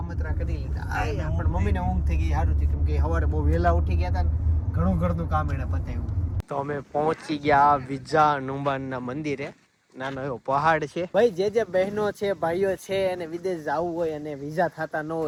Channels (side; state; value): both; identical; correlation 1.00